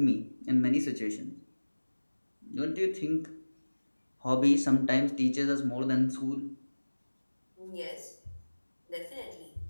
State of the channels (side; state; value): both; inverted; correlation -1.00